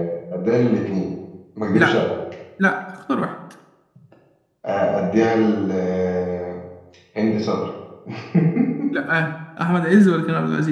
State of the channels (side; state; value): both; identical; correlation 1.00